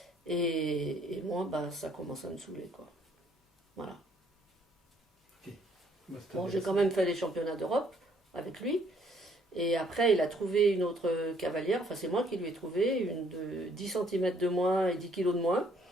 Et moi, ça commence à me saouler, quoi. Voilà. Ok. Bah, c'est Bon, j'ai quand intéressant. même fait les championnats d'Europe avec lui. Et après, il a trouvé une autre cavalière. Enfin, c'est moi qui lui ai trouvé une de 10 centimètres de moins et 10 kilos de moins.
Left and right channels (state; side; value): normal; both; correlation 0.64